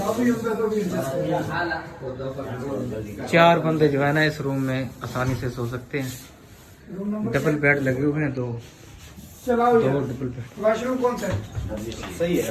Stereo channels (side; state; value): both; identical; correlation 1.00